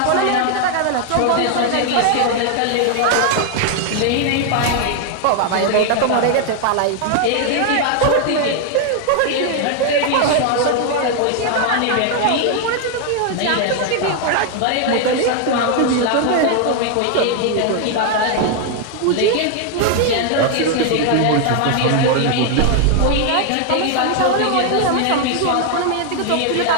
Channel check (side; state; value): both; different; correlation 0.00